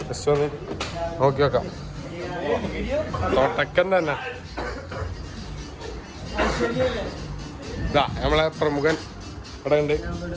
ജസ്റ്റ് ഒന്ന് നോക്കി വെക്കാം. തൊട്ടക്കൻ തന്നെ ഇതാ നമ്മളെ പ്രമുഖൻ ഇവിടെ ഉണ്ട്.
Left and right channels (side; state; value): both; identical; correlation 1.00